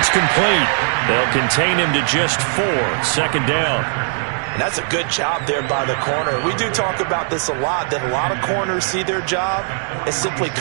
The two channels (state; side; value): silent; left; 57 dB below the other